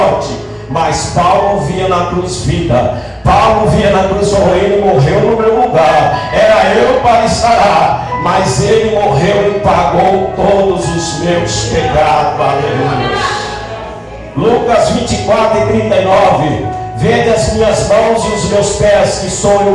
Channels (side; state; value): both; identical; correlation 1.00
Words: Mas Paulo via na cruz vida. Paulo via na cruz, ele morreu no meu lugar, era eu para estar lá, mas ele morreu e pagou todos os meus pecados. Aleluia. Lucas 24:39. Vede as minhas mãos e os meus pés, que sou